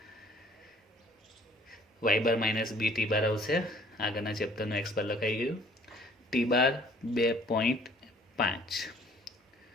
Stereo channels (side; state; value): both; normal; correlation 0.56